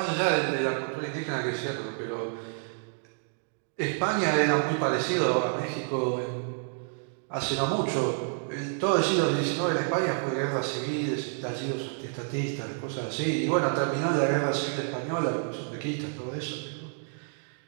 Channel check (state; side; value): silent; left; 59 dB below the other